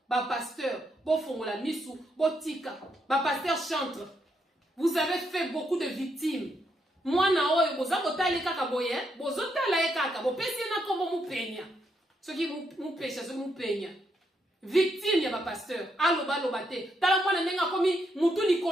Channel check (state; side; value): normal; both; correlation 0.78